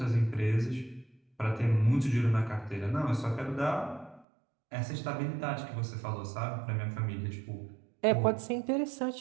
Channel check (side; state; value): left; drops out; at 4.2 s